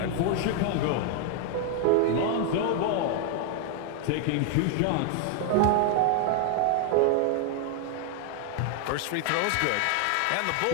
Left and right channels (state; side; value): different; both; correlation 0.01